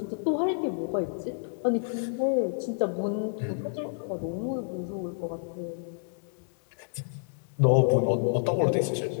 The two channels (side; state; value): right; silent; 59 dB below the other